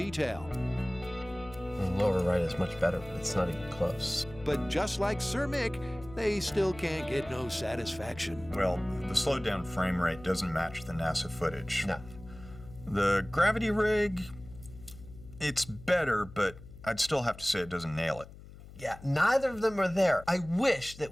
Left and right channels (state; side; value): noise; left; hum, 17 dB below the sound